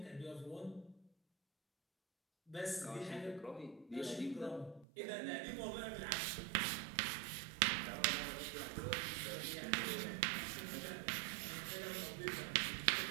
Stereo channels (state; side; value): drops out; left; at 4.9 s